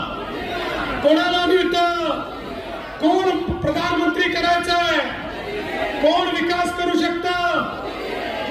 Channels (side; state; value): both; identical; correlation 1.00